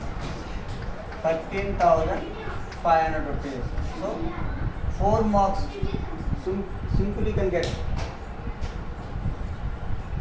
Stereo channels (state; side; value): identical; both; correlation 1.00